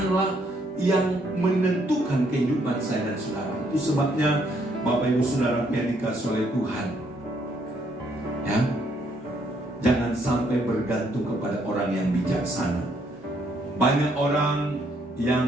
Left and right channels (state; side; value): normal; both; correlation 0.70